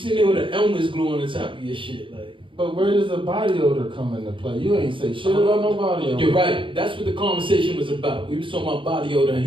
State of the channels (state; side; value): late; left; 0.25 ms